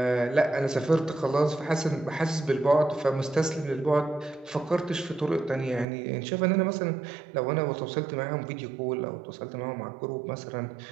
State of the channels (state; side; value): drops out; left; at 5.9 s